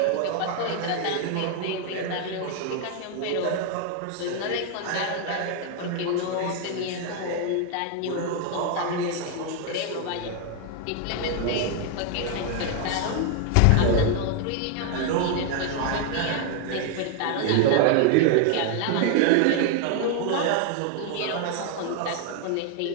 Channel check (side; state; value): both; different; correlation 0.00